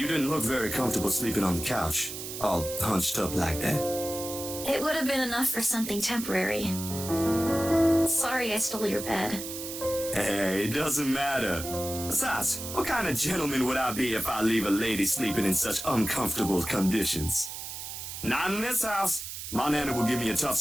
didn't look very comfortable sleeping on the couch, all hunched up like that. It would have been enough for something temporary. Sorry I stole your bed. Hey, it doesn't matter. Besides, what kind of gentleman would I be if I leave a lady sleeping in such uncomfortable conditions? Not in this house. My nana will give me a tough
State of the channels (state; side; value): noise; right; hiss, 8 dB below the sound